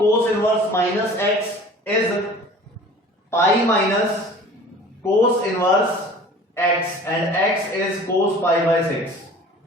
inverse minus x is pi minus cos inverse x and x is cos pi by 6।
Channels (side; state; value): both; normal; correlation 0.45